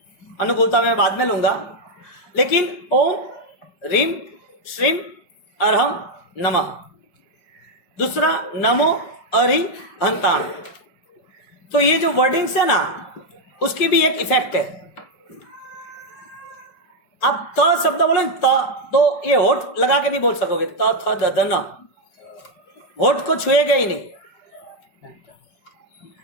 अनुकूलता में बाद में लूंगा, लेकिन ओम ह्रीम श्रीम अरहम नमः, दूसरा नमो अरि हंताण। तो ये जो वर्डिंग्स है ना, उसकी भी एक इफेक्ट है। आप त शब्द बोलो त, तो ये होठ लगा के नहीं बोल सकोगे, त थ द ध न, होठ को छुएगा ही नहीं।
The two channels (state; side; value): late; right; 5.6 ms